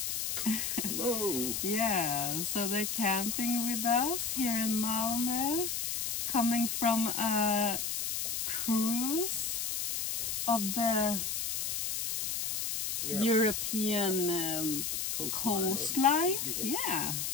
Hello. Yeah, so they're camping with us here in Malmö, coming from a cruise of the European coastline. Yeah.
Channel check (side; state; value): left; noise; hiss, 1 dB below the sound